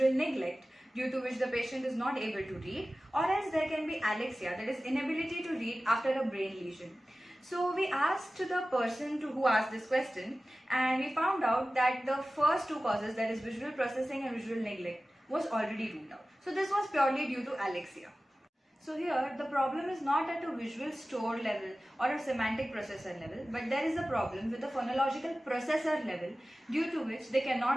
neglect due to which the patient is not able to read, or else there can be alexia, that is inability to read after a brain lesion. So we asked the person who asked this question, and we found out that the first two causes, that is visual processing and visual neglect, was already ruled out. So this was purely due to alexia. So here the problem is not at a visual store level or a semantic processor level, but there is a problem with the phonological processor level due to which they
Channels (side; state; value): both; normal; correlation 0.96